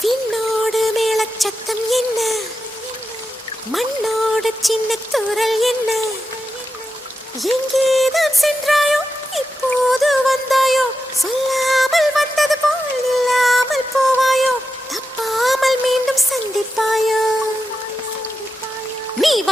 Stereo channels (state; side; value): normal; both; correlation 0.89